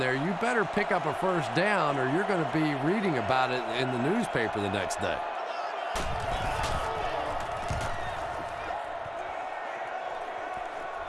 you better pick up a first down or you're going to be reading about it in the newspaper the next day.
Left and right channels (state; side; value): identical; both; correlation 1.00